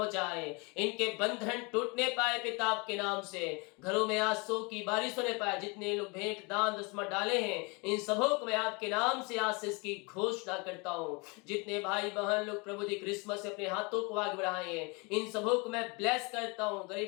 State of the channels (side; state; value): right; quieter; 29.3 dB